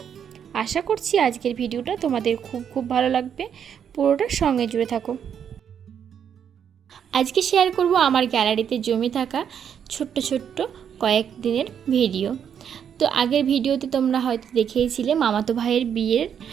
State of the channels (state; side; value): quieter; left; 8.3 dB